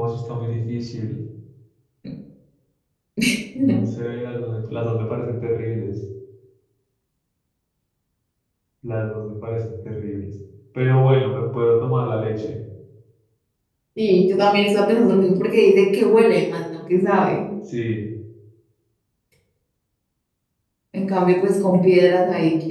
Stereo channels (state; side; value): identical; both; correlation 1.00